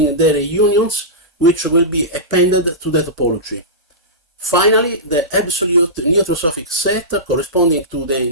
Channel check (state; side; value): normal; both; correlation -0.17